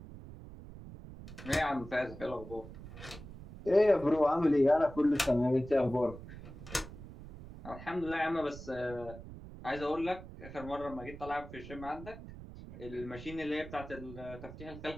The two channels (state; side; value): noise; right; rumble, 14 dB below the sound